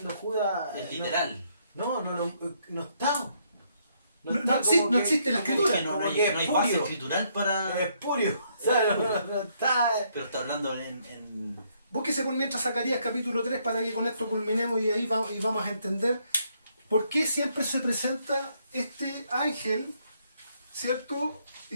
Judas... Es literal. No está. No existe la escritura. Porque no hay base espurio. escritural para... Es espurio. O sea, no está... Pero está hablando en... Búsquese por mientras Zacarías capítulo 3 para que con esto culminemos y ahí vamos a entender por qué siempre se presenta este ángel, ¿cierto?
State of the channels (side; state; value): both; inverted; correlation -0.71